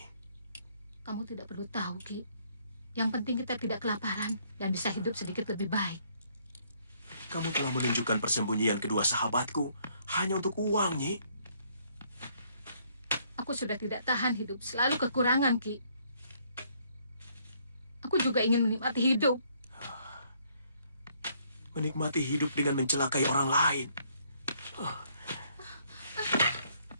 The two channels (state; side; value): inverted; both; correlation -0.67